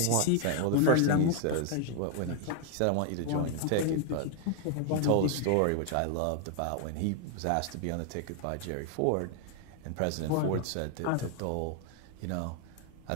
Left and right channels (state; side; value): different; both; correlation 0.00